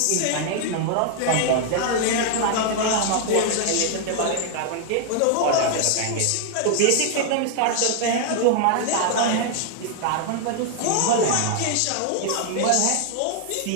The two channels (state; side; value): different; both; correlation 0.00